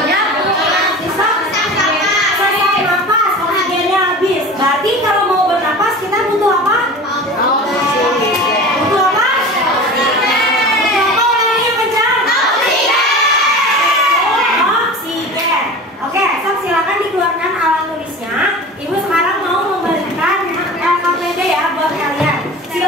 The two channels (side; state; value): both; normal; correlation 0.35